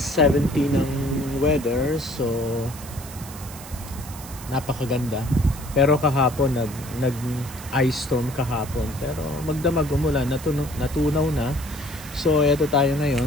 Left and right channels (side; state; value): right; noise; hiss, 15 dB below the sound